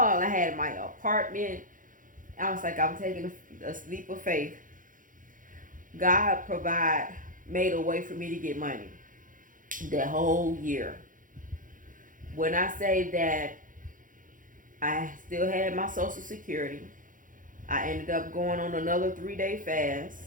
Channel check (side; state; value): left; late; 0.39 ms